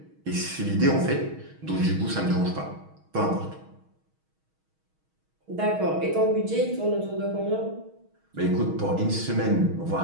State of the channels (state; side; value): late; left; 6.3 ms